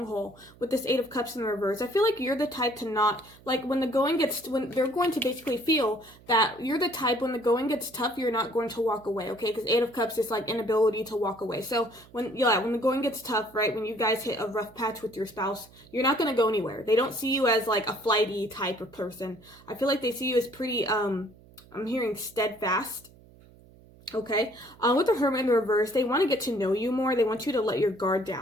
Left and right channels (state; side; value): noise; right; hum, 24 dB below the sound